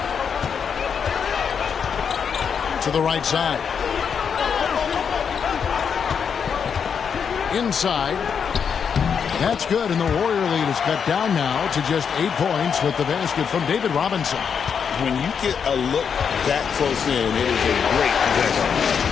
To the right side. Inside. That's good, and the Warrior lead is cut down now to just 8 points with the basket from David Robinson. When you get a look that close in, it is a great possession.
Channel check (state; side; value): quieter; right; 6.9 dB